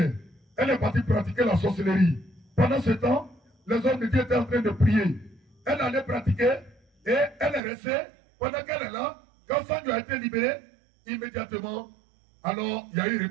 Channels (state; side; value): drops out; left; at 7.6 s